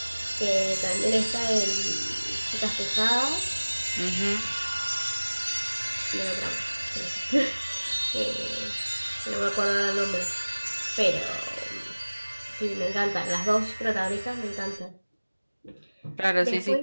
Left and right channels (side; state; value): both; inverted; correlation -1.00